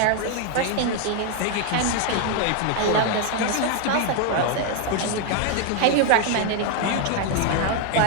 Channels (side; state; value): both; different; correlation 0.00